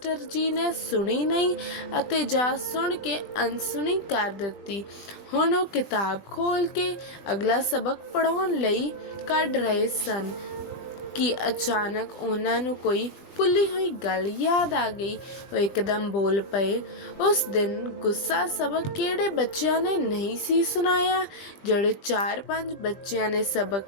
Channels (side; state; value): right; late; 20 ms